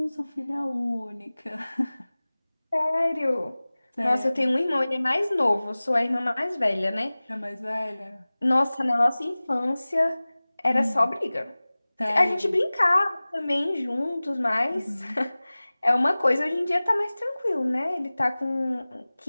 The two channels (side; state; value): both; inverted; correlation -0.99